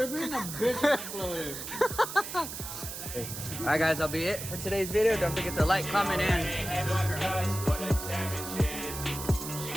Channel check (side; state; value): right; noise; hiss, 8 dB below the sound